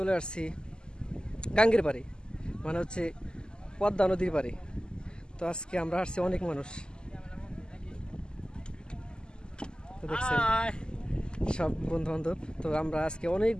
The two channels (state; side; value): late; right; 0.047 ms